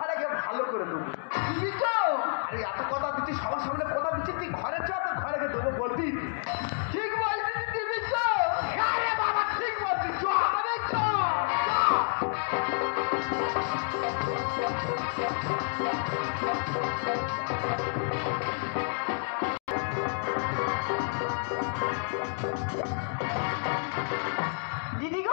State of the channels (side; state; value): right; silent; 58 dB below the other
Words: গিয়ে ভালো করে দেবো। দিবি তো? আরে এত কথা দিচ্ছি, সবার সামনে কথা দিচ্ছি, তুই ঘরে চ, তোর ঘরে গিয়ে দেবো বলবি। ঠিক বলছিস, দিবি তো? আরে বাবা ঠিক বলছিস, চ আরে চ দিদি